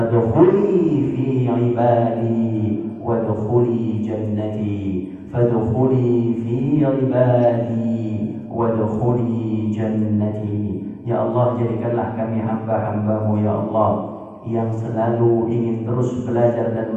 fi ibadi wadkhuli jannati, fadkhuli fi ibadi wadkhuli jannati. Ya Allah, jadikanlah kami hamba-hamba-Mu ya Allah yang selalu ingin terus belajar dan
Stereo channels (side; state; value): both; identical; correlation 1.00